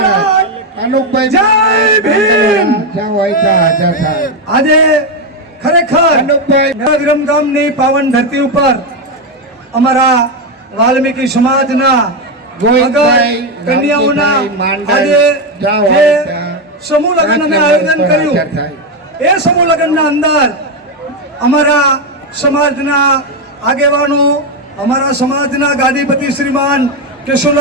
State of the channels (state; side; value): normal; both; correlation 0.07